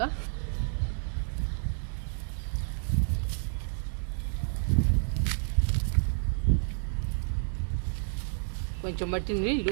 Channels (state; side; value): silent; left; digital silence